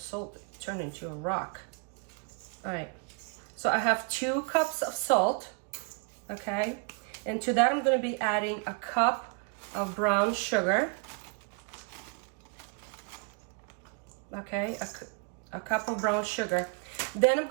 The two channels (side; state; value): left; quieter; 38.2 dB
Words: turned into a rock. All right, so I have 2 cups of salt, okay? And to that, I'm gonna be adding a cup of brown sugar, okay? A cup of brown sugar. Then I'm